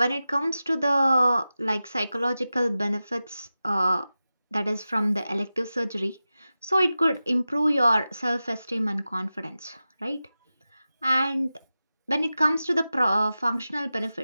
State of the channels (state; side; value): inverted; both; correlation -0.94